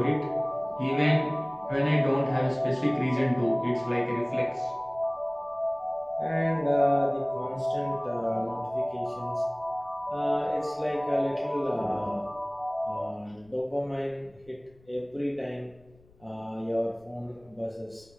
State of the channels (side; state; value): left; noise; rumble, 28 dB below the sound